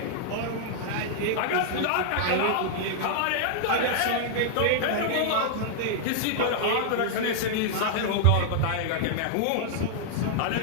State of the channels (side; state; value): both; different; correlation -0.01